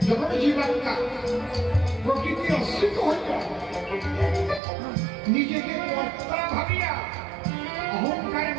যখন জীবাত্মা প্রকৃতি অস্বীত হয়ে যায়, নিজেকে কর্তা ভাবিয়া অহংকারে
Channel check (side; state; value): left; drops out; at 4.6 s